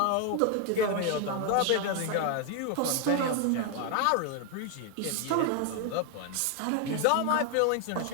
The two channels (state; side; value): different; both; correlation 0.00